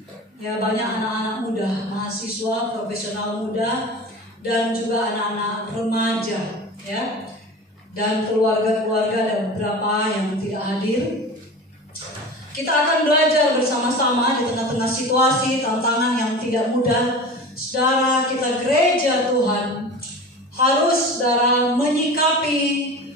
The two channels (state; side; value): normal; both; correlation 0.34